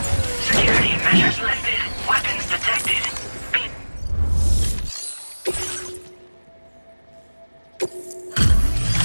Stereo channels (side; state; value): both; inverted; correlation -1.00